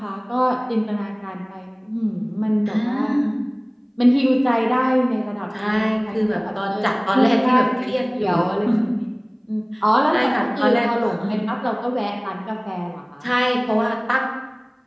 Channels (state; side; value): identical; both; correlation 1.00